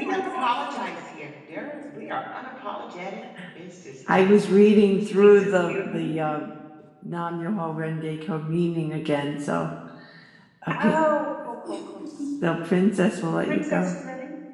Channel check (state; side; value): identical; both; correlation 1.00